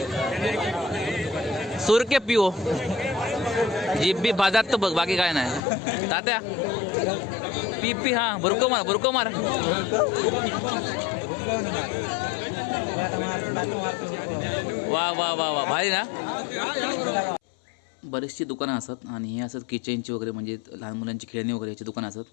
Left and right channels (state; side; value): drops out; right; at 5.6 s